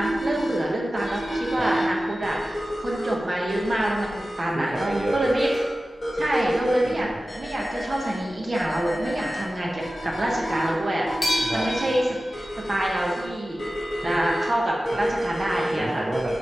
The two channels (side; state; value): both; normal; correlation 0.95